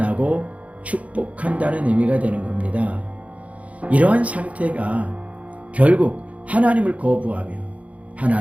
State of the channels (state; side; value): late; left; 0.066 ms